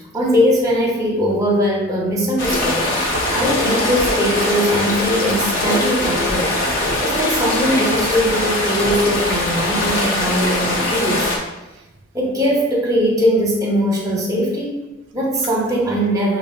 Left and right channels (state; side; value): normal; both; correlation 0.39